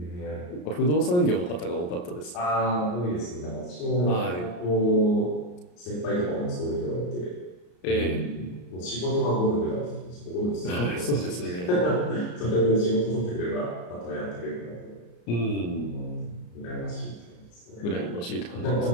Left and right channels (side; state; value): right; late; 34 ms